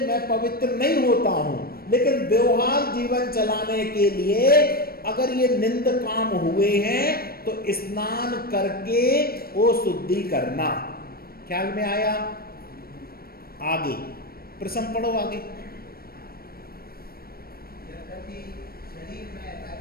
मैं पवित्र नहीं होता हूं, लेकिन व्यवहार जीवन चलाने के लिए अगर ये निंद काम हुए हैं तो स्नान करके वो शुद्धि करना। ख्याल में आया? आगे प्रश्न पढ़ो आगे। शरीर में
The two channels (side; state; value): right; late; 0.44 ms